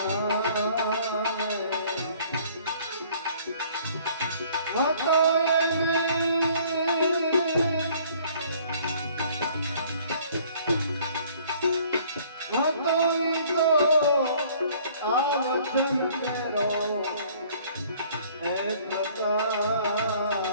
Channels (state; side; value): inverted; both; correlation -0.56